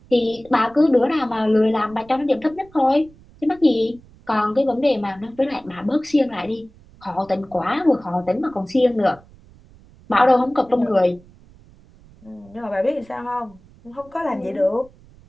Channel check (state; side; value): noise; right; rumble, 25 dB below the sound